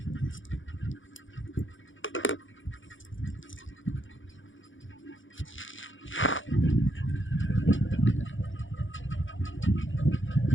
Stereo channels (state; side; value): late; right; 0.56 ms